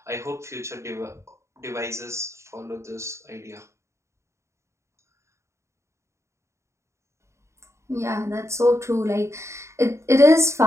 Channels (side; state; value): left; late; 0.14 ms